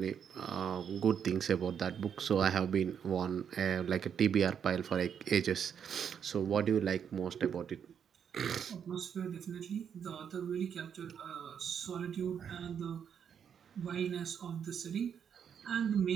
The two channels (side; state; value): left; quieter; 7.9 dB